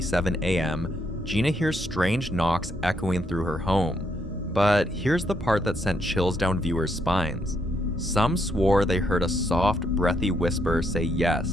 a.m., Gina hears strange knocks echoing through her home. But here's the part that sent chills down viewers' spines. Some swore they heard a soft, breathy whisper say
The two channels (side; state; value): both; normal; correlation 0.75